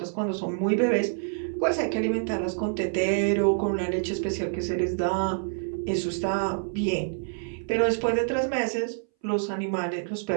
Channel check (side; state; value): left; silent; 60 dB below the other